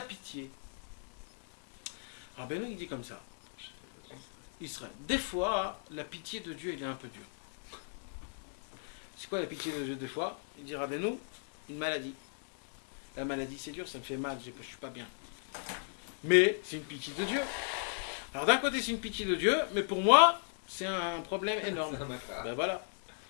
pitié. Rabbeinu il dit comme ça. Israël. Des fois, la pitié de Dieu, il est un peu dure. C'est quoi la pitié de Dieu des fois? Il dit Rabbeinu, une maladie. La maladie c'est dur, ça me fait mal, je suis pas bien. Mais c'est une pitié de Dieu. Alors d'un côté c'est une pitié de Dieu, mais pour moi c'est un problème énorme. Ben voilà.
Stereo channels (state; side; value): silent; right; digital silence